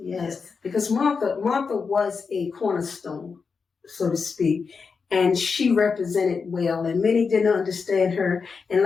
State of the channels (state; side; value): quieter; right; 5.2 dB